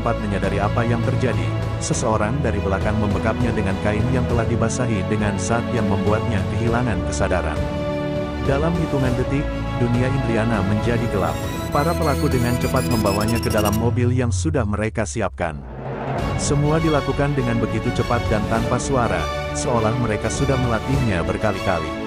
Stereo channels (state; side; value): identical; both; correlation 1.00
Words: menyadari apa yang terjadi, seseorang dari belakang membekapnya dengan kain yang telah dibasahi dengan zat yang membuatnya kehilangan kesadaran. Dalam hitungan detik, dunia Indriana menjadi gelap. Para pelaku dengan cepat membawanya ke dalam mobil yang sudah mereka siapkan. Semua dilakukan dengan begitu cepat dan tanpa suara, seolah mereka sudah melatihnya berkali-kali.